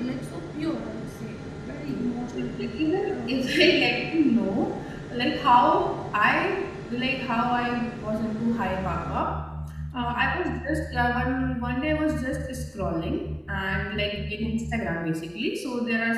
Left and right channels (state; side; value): identical; both; correlation 1.00